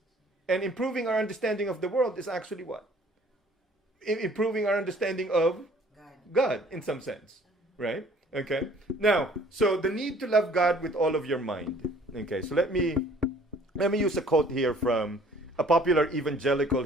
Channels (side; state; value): both; normal; correlation 0.55